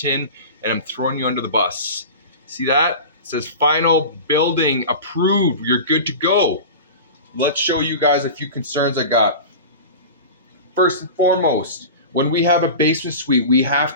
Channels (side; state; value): both; inverted; correlation -0.31